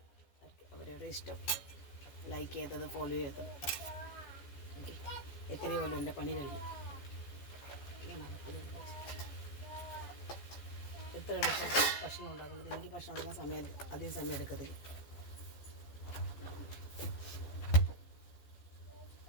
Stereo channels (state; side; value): late; right; 14 ms